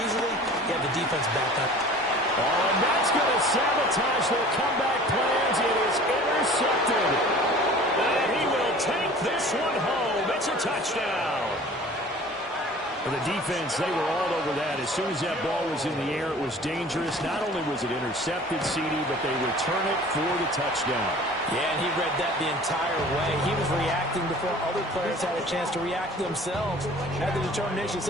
you have the defense back up. Oh, and that's going to sabotage their comeback plans. It is intercepted. And he will take this one home. It's a touchdown. For the defense, they were all over that. As soon as that ball was in the air, it was dangerous. Not only was it intercepted, CD, but they return it for the touchdown. Yeah, and he read that the entire way. He was reacting before other players had a chance to react themselves. Had the determination to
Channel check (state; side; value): normal; both; correlation 0.46